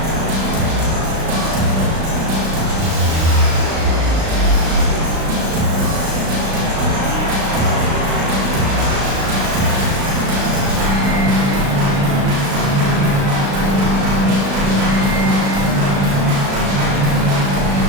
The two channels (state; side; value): late; left; 36 ms